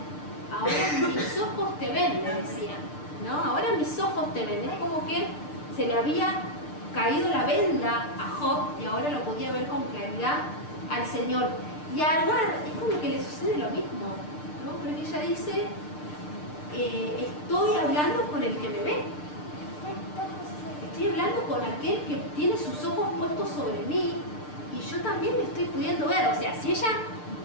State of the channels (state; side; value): late; right; 6.7 ms